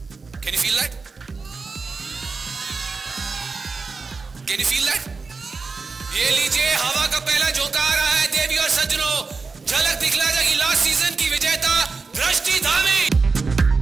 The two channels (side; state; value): left; quieter; 4.4 dB